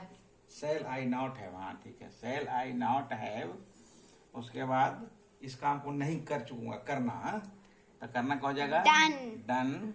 shall I not have. हाँ ठीक है, सेल आई नॉट हैव। उसके बाद इस काम को नहीं कर चुकूंगा, करना। हाँ? तो करना क्या हो जाएगा? Done. डन।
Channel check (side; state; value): both; identical; correlation 1.00